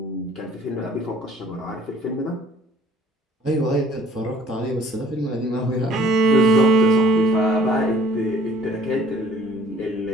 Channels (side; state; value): both; normal; correlation 0.55